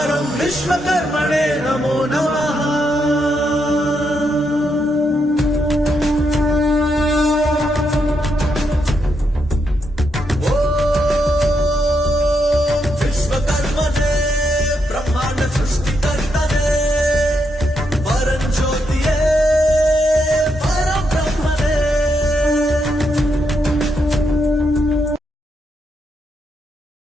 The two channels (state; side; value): normal; both; correlation 0.80